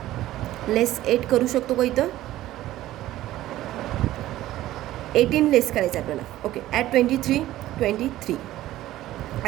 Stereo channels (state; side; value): quieter; left; 14.8 dB